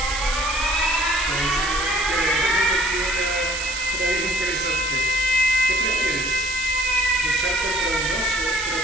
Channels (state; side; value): noise; right; hiss, 5 dB below the sound